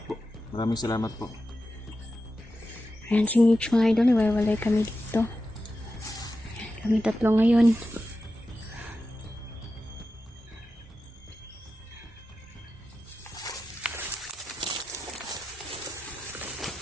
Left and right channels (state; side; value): normal; both; correlation 0.91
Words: po. Maraming salamat po. Ayan si Mitch mga idol, iwalay kami dito. Kami tatlo ngayon.